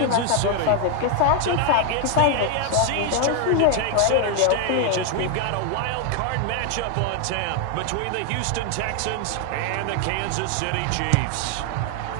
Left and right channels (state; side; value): different; both; correlation 0.01